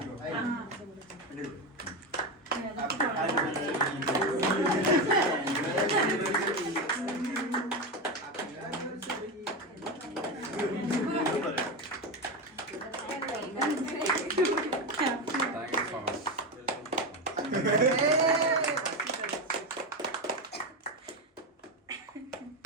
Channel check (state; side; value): normal; both; correlation 0.15